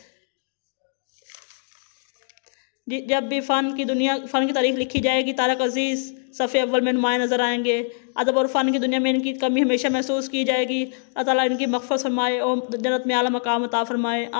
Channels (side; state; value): right; silent; digital silence